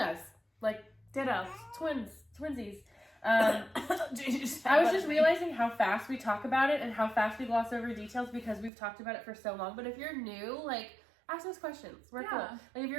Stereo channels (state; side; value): drops out; left; at 8.7 s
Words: Like, ditto. Twinsies. I was just realizing how fast we talk about it and how fast we gloss over details because we've talked about it for so long. But if you're new, like, ask us questions. We're cool. Like, if